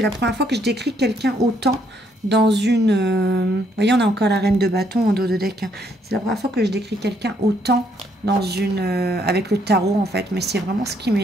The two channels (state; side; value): normal; both; correlation 0.71